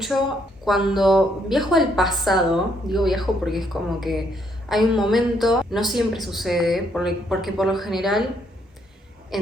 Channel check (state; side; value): normal; both; correlation 0.72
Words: cuando viajo al pasado, digo viajo porque es como que hay un momento, no siempre sucede, porque por lo general